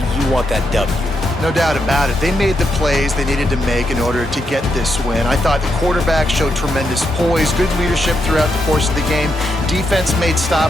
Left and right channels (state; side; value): normal; both; correlation 0.82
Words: want that W. No doubt about it. They made the plays they needed to make in order to get this win. I thought the quarterback showed tremendous poise, good leadership throughout the course of the game. Defense made